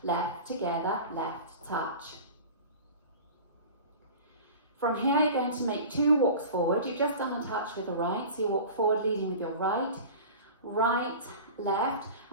left together, left touch. From here you're going to make 2 walks forward. You've just done a touch with the right, so you walk forward leading with your right, right, left,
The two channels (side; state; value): both; inverted; correlation -0.36